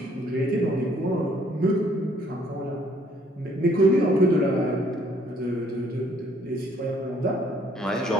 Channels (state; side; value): normal; both; correlation 0.63